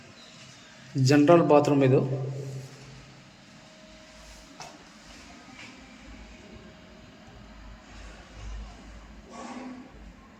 ಜನರಲ್ ಬಾತ್ರೂಮ್ ಇದು.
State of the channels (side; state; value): both; identical; correlation 1.00